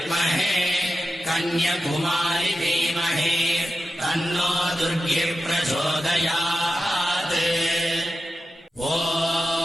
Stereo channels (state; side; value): normal; both; correlation 0.92